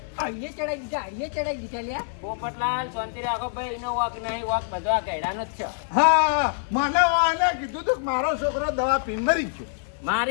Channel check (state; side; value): silent; right; 61 dB below the other